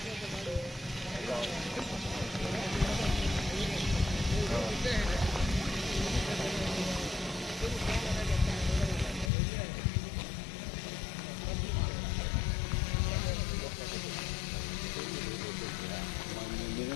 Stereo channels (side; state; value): right; drops out; at 9.3 s